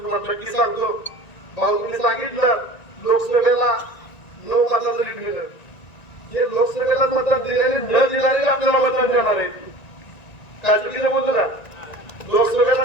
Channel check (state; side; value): late; right; 1.9 ms